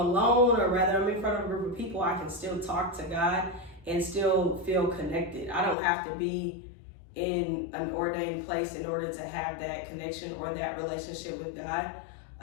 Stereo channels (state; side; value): drops out; right; at 5.8 s